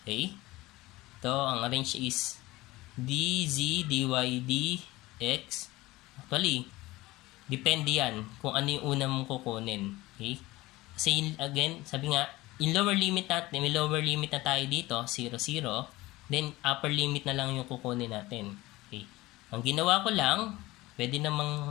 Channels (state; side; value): quieter; right; 19.3 dB